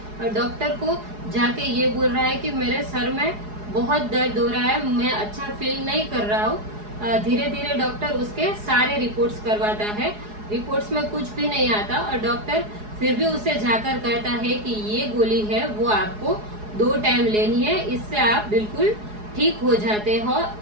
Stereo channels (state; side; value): late; left; 4.8 ms